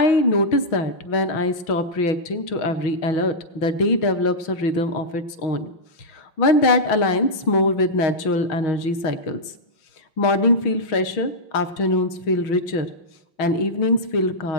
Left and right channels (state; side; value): late; right; 6.3 ms